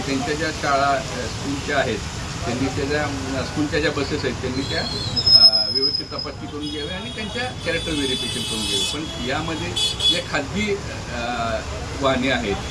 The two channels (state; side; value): identical; both; correlation 1.00